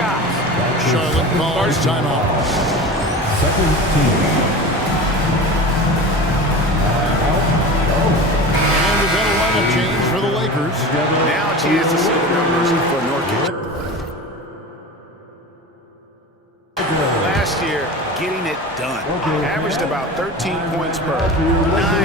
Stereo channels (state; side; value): normal; both; correlation 0.32